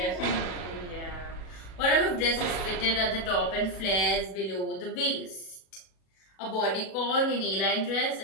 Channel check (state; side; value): late; right; 37 ms